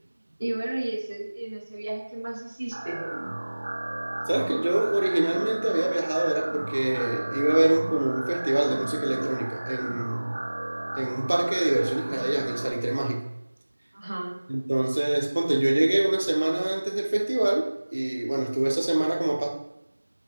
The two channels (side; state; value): both; inverted; correlation -1.00